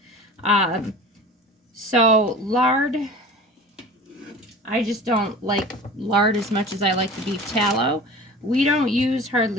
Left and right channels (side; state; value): both; normal; correlation 0.39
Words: So lard, I just don't like lard as much as I like the beef tallow. We don't use